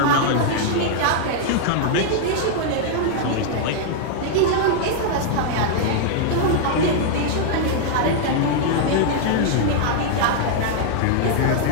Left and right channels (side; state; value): both; different; correlation -0.01